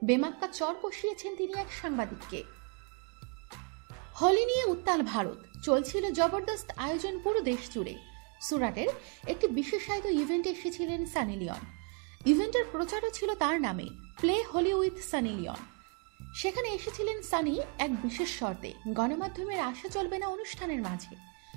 বেমাক্কা চর কষিয়েছেন তিনি এক সাংবাদিককে। হোলি নিয়ে উত্তাল ভারত, চলছিল জবরদস্ত আয়োজন পুরো দেশ জুড়ে। সুরাটের একটি বিশেষায়িত ইভেন্টে এসেছিলেন সানি লিওন। ইভেন্টের প্রচারও ছিল তার নামে, play Holi with Sunny Leone. সেখানে এসেছিলেন সানি এক বিশেষ শর্তে, গণমাধ্যমের আশা চলবে না অনুষ্ঠানের মাঝে।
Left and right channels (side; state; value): left; quieter; 36.0 dB